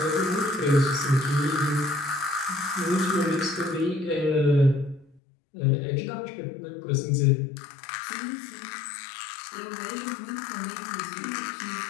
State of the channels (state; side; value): drops out; right; at 5.2 s